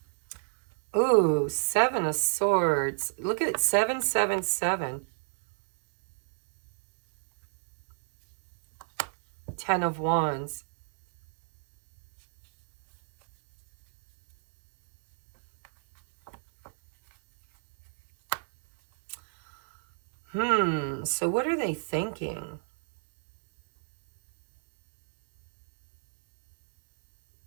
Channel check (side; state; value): left; silent; digital silence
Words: Ooh, Seven of Swords. Look at it, 777. 10 of Wands. So what are they thinking?